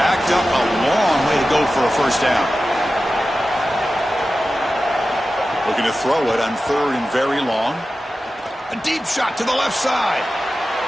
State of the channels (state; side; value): normal; both; correlation 0.94